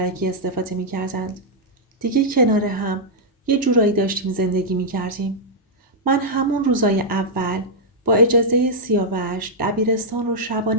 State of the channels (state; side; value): normal; both; correlation -0.07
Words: استفاده می‌کردند. دیگه کنار هم یه جورایی داشتیم زندگی می‌کردیم. من همون روزای اول با اجازه سیاوش دبیرستان رو